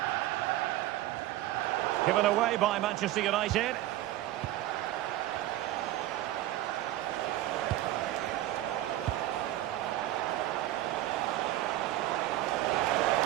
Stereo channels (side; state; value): left; quieter; 14.9 dB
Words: Given away by Manchester United.